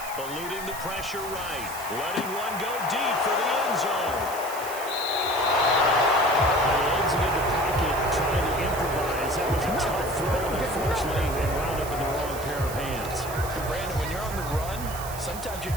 Eluding the pressure right. Letting one go deep for the end zone. He ends it in the pocket, trying to improvise. That was a tough throw, unfortunately, and wound up in the wrong pair of hands. Brandon, when you're on the run, sometimes your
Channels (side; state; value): right; noise; hiss, 12 dB below the sound